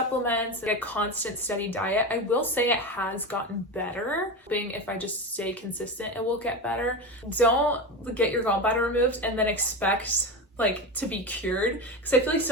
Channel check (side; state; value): both; normal; correlation 0.21